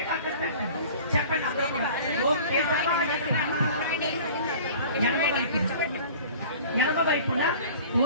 చెప్పండి. అందరూ కూడా ఓం కేశవాయ నమః. ఎడమ వైపున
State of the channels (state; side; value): inverted; both; correlation -0.44